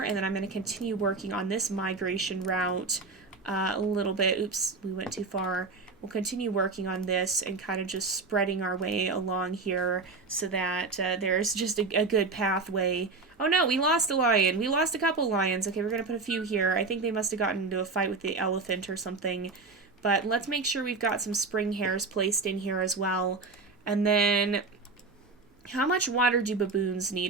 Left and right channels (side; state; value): left; quieter; 3.9 dB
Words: and then I'm going to continue working on this migration route a little bit. Oops, we went too far. We'll continue working on this and kind of just spreading our way along here so that there's just a good pathway. Oh no, we lost a lion. We lost a couple lions. Okay, we're going to put a few here. I think they must have gotten into a fight with the elephant or something. But let's make sure we've got some spring hares placed in here as well. And then, how much water do baboons